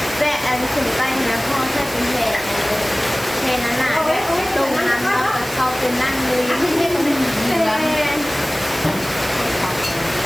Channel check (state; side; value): noise; right; hiss, 14 dB below the sound